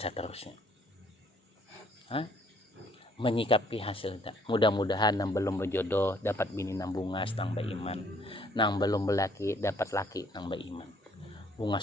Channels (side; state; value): both; normal; correlation 0.63